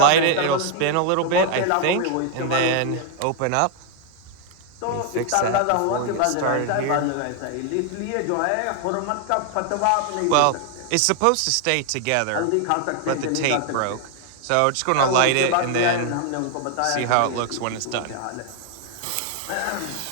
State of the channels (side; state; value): both; different; correlation 0.00